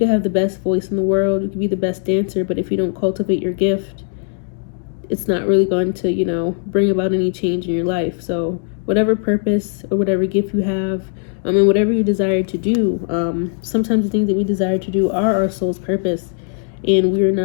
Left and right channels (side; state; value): right; silent; 55 dB below the other